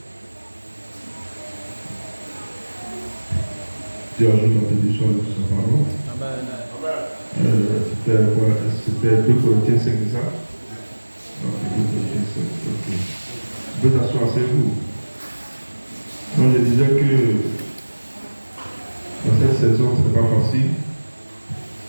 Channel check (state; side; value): inverted; both; correlation -1.00